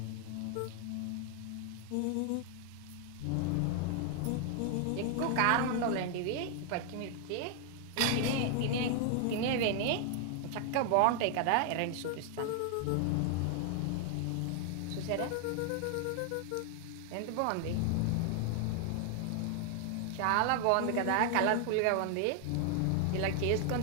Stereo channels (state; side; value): different; both; correlation 0.00